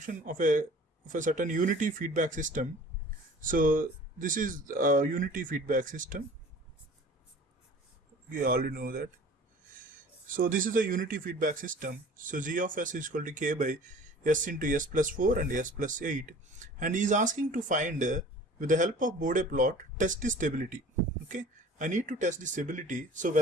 of a certain unity feedback system. So this is a unity feedback system. We already know that. So this is a unity feedback system. So g of s is equal to k by s into s plus 4 and s plus 8, and he is asking to find with the help of Bode plot test the stability. Okay, I need to test the stability, so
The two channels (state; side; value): normal; both; correlation 0.46